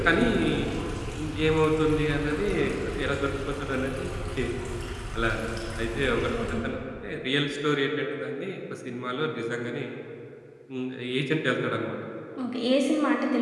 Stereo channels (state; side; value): identical; both; correlation 1.00